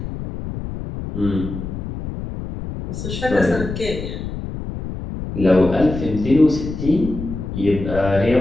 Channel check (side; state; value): left; noise; rumble, 7 dB below the sound